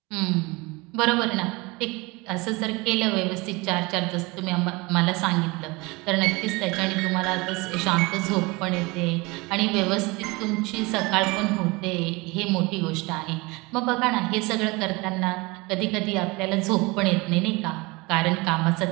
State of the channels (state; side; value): quieter; left; 24.8 dB